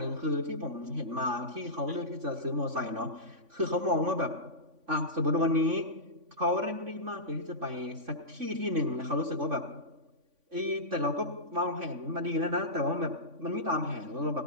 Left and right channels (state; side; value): late; left; 3.5 ms